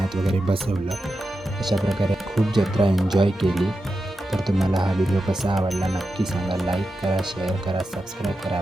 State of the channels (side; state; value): both; normal; correlation 0.90